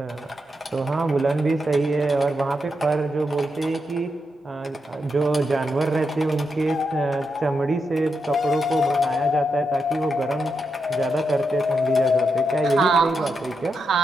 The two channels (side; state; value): both; normal; correlation 0.84